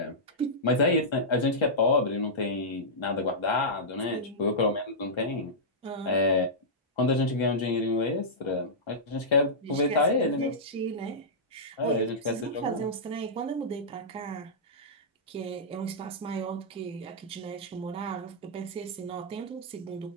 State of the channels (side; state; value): both; normal; correlation -0.12